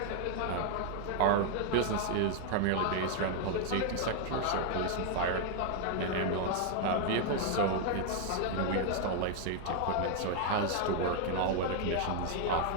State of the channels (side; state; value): both; different; correlation 0.00